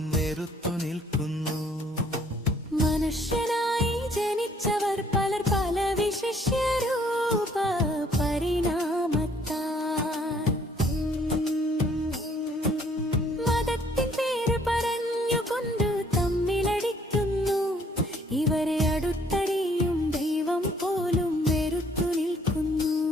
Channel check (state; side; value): normal; both; correlation 0.62